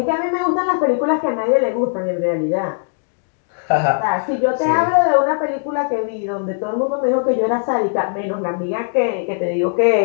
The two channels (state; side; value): silent; right; digital silence